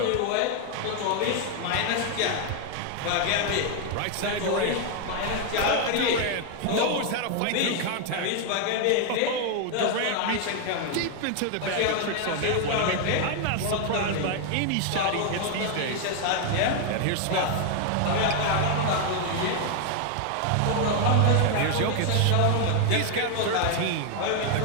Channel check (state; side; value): different; both; correlation 0.00